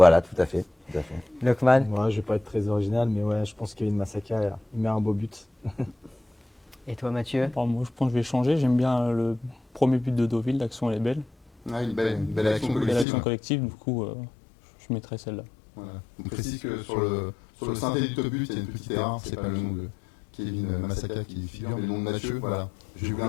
tout à fait. Lokman. Moi, je vais pas être très original, mais ouais, je pense que Kevin Massaka, il met un beau but. Et toi, Mathieu? Bon, moi, je pense que je vais changer. J'aime bien le premier but de Deauville, l'action elle est belle. Ah, une belle action collective. Belle action collective, du coup, je mettrai celle-là. Voilà. On précise que sur le synthé du top but, il y a une petite erreur. C'est pas le nom de Kevin Massaka qui figure, mais le nom de Mathieu. Voilà. J'ai voulu un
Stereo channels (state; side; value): drops out; right; at 13.1 s